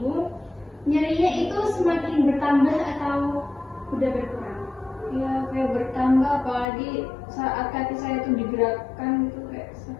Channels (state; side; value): drops out; right; at 6.7 s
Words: nyerinya itu semakin bertambah atau udah berkurang? Ya kayak bertambah, apalagi saat kaki saya itu digerakkan itu kayak